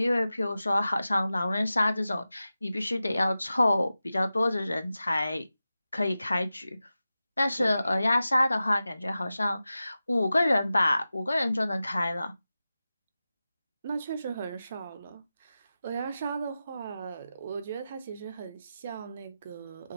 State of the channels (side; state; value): both; inverted; correlation -0.94